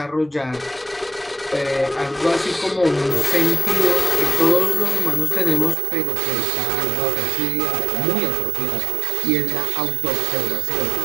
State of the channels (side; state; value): left; drops out; at 5.8 s